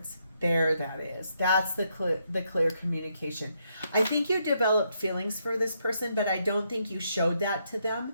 There that is. That's the clear communication. I think you developed feelings for this person, but I don't think you showed that to them.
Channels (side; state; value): both; inverted; correlation -0.77